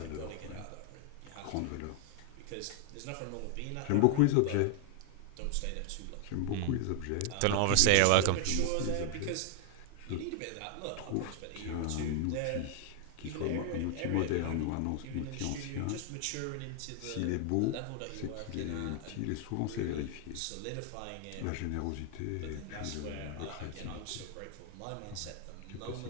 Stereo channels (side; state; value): both; different; correlation 0.00